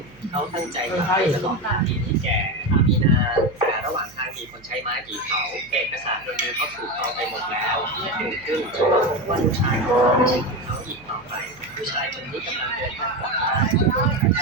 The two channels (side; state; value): right; noise; hum, 25 dB below the sound